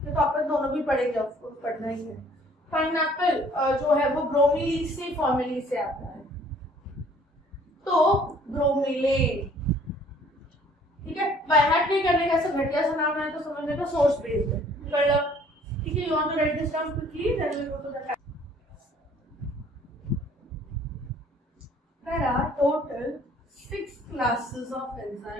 तो अपन दोनों भी पढ़ेंगे, आपको पढ़ना ही है। पाइनएप्पल जो है वो ब्रोमीलीज से फॉर्मेली से आता है, तो ब्रोमिलेन। ठीक है, बाय हार्ट नहीं करने का, ऐसा घटिया सा नाम है तो समझने का सोर्स बेस्ड है। ठीक है, you want to write this down quickly, then we will go to the There are total 6 classes of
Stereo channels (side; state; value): both; normal; correlation 0.57